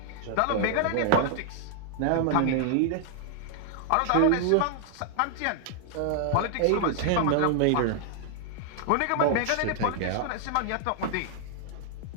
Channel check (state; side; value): different; both; correlation 0.00